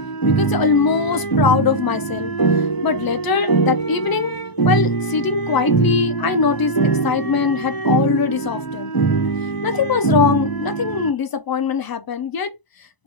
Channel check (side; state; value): right; late; 1.0 ms